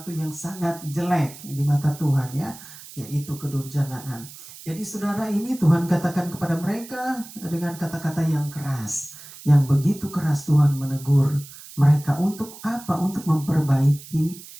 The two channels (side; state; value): right; noise; hiss, 17 dB below the sound